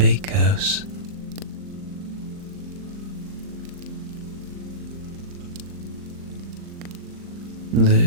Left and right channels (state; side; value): late; left; 39 ms